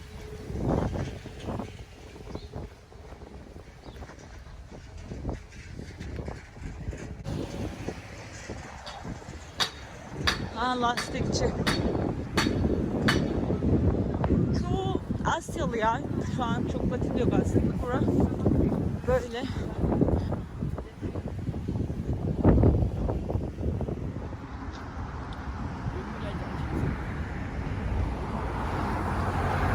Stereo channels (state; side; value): identical; both; correlation 1.00